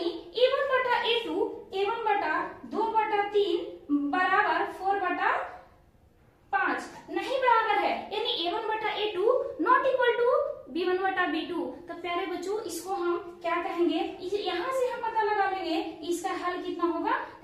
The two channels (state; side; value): identical; both; correlation 1.00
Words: a1 बटा a2 a1 बटा 2/3 बराबर 4/5 नहीं बराबर है, यानी a1 बटा a2 not equal to b1 बटा b2। तो प्यारे बच्चों इसको हम क्या कहेंगे, यहाँ से हम पता लगा लेंगे इसका हल कितना होगा,